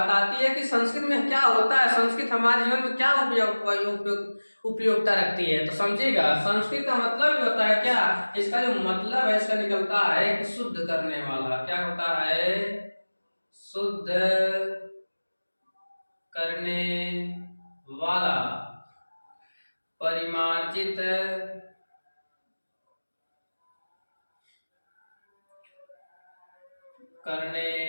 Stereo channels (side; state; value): both; inverted; correlation -1.00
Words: आती है कि संस्कृत में क्या होता है, संस्कृत हमारे जीवन में क्या उपयोगिता रखती है। तो समझिएगा, संस्कृत का मतलब भी होता है क्या, इसका जो मतलब है इसका निकलता है कि शुद्ध करने वाला। क्या होता है? शुद्ध करने वाला, परिमार्जित करने